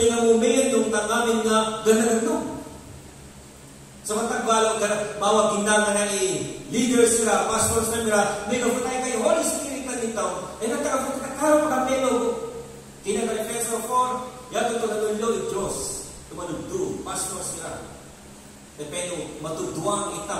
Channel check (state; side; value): identical; both; correlation 1.00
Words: ka mo, mayan, nung tangamin nga, ganagano. Sa matagbalo, mawag gindaga na leaders sila, pastors na nila, may gapon tayo kayo, Holy Spirit na nito, nagtagapon ka, karo ka pelo. Kinaka-Efeso 4, yato ito natulog, Diyos, tumalugdo, pastors sila. Dependo, matuduang